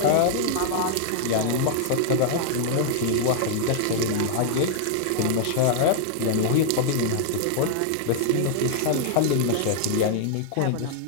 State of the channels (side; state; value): both; different; correlation -0.01